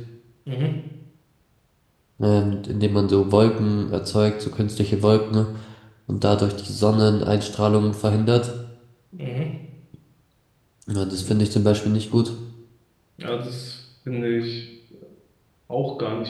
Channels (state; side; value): identical; both; correlation 1.00